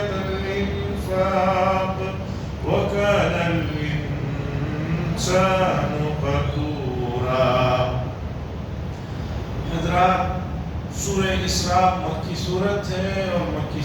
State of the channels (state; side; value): identical; both; correlation 1.00